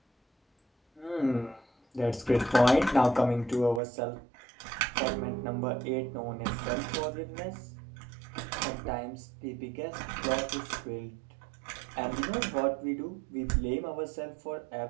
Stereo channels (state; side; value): drops out; left; at 3.8 s